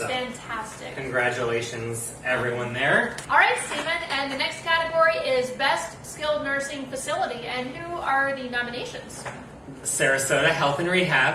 fantastic. Congratulations, everyone there. All right, Stephen, and the next category is Best Skilled Nursing Facility. And who are the nominations? Sarasota Health and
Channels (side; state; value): both; identical; correlation 1.00